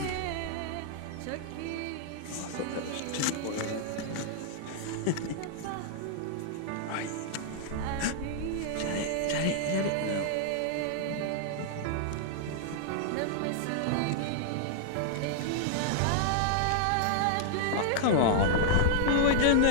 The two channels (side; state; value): both; different; correlation -0.01